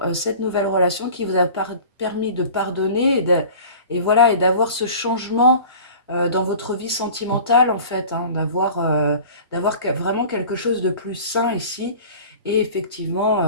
cette nouvelle relation qui vous a permis de pardonner et voilà, et d'avoir ce changement dans votre vie sentimentale en fait, hein, d'avoir vraiment quelque chose de plus sain ici et effectivement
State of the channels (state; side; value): inverted; both; correlation -0.41